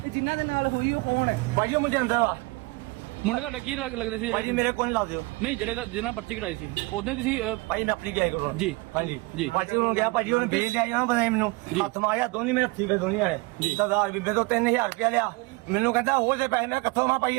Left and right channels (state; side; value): quieter; left; 24.4 dB